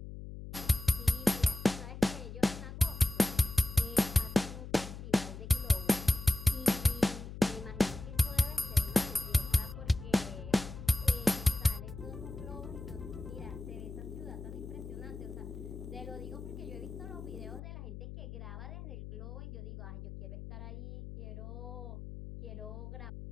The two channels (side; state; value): left; noise; hum, 10 dB below the sound